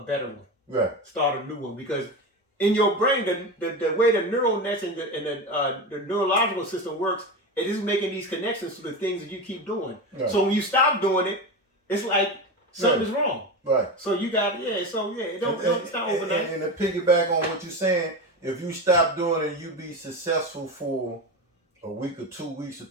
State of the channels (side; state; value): both; normal; correlation 0.22